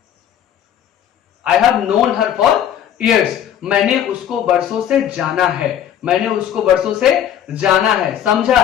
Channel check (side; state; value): right; quieter; 10.0 dB